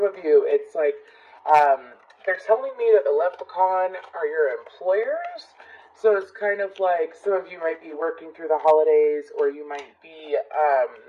of you, it's like they're telling me that the leprechaun are your employers. So it's kind of like some of you might be working through the holidays, or you might be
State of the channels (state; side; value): identical; both; correlation 1.00